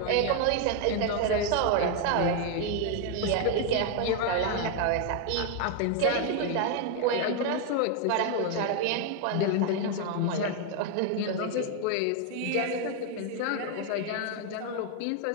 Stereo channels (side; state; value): both; different; correlation 0.01